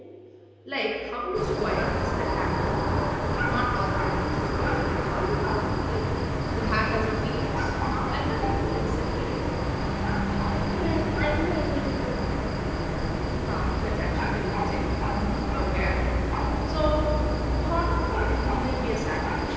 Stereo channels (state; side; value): identical; both; correlation 1.00